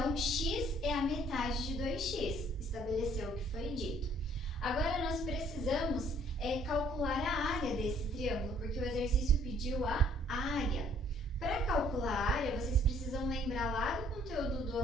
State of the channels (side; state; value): both; normal; correlation 0.61